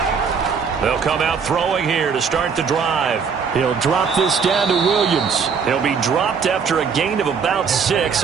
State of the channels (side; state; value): left; quieter; 6.0 dB